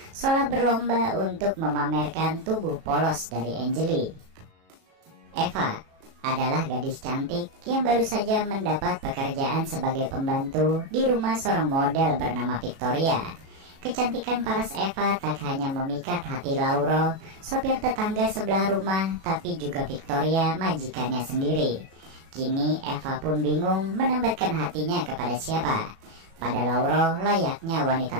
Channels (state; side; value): late; left; 37 ms